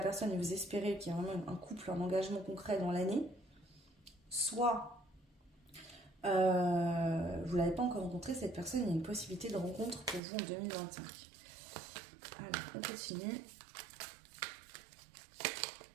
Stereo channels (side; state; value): left; drops out; at 10.2 s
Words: personne et vous espérez qu'il y a vraiment un couple, un engagement concret dans l'année, soit vous ne l'avez pas encore rencontré, cette personne, il y a une possibilité de rencontre pour vous en 2025. Alors, on continue.